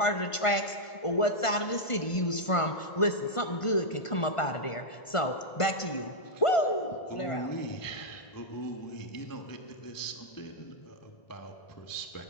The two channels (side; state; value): right; late; 1.5 ms